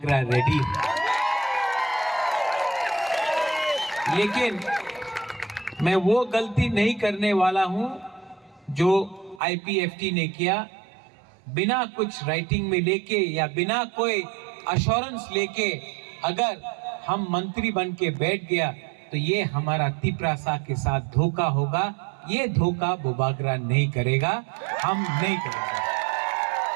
रेडी। लेकिन मैं वो गलती नहीं करने वाला हूं जो आईपीएफटी ने किया, बिना कुछ राइटिंग में लेके या बिना कोई अश्योरेंस लेके अगर हम मंत्री बन के बैठ गया तो ये हमारा तिपरासा के साथ धोखा होगा। ये धोखा बुबागरा नहीं करेगा, हम नहीं करेंगे।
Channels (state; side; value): drops out; left; at 9.4 s